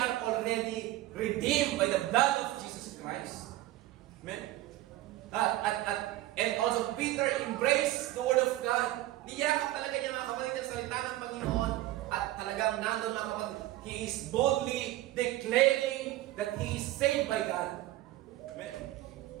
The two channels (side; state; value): left; quieter; 16.0 dB